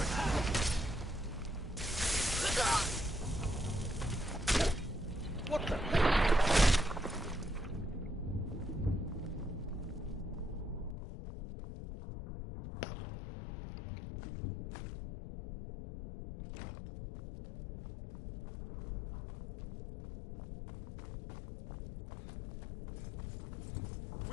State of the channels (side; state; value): right; drops out; at 11.0 s